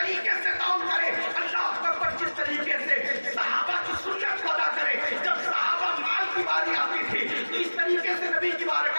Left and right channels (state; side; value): inverted; both; correlation -1.00